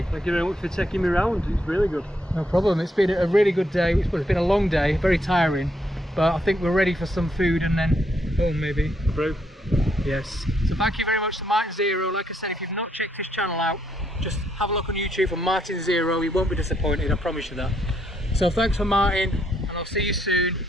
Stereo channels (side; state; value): both; normal; correlation 0.75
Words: Thank you very much for taking me around. It's really good. No problem. It's been a really good day. It's been a long day, very tiring, but I think we're ready for some food and then home maybe. Through. Yes. So thank you very much to MartinZero. Like I said, if you've not checked his channel out, just have a look on YouTube for MartinZero. You won't be disappointed, I promise you that. So thanks for Martin, and I'll see you soon.